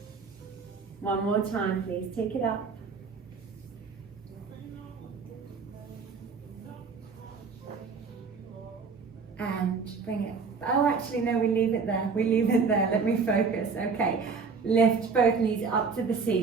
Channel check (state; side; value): quieter; left; 5.1 dB